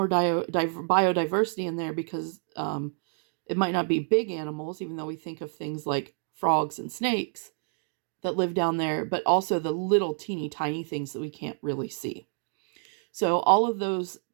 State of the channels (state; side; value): silent; left; 59 dB below the other